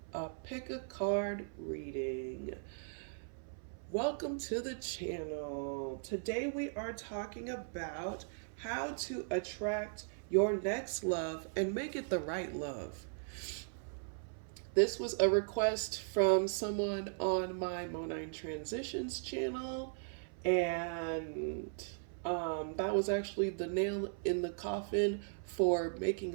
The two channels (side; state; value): left; silent; 53 dB below the other